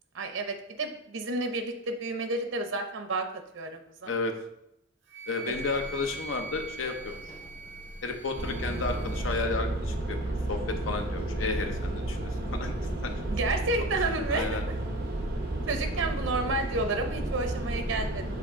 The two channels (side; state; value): both; normal; correlation 0.30